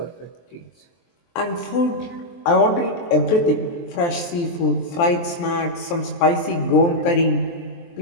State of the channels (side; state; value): right; late; 23 ms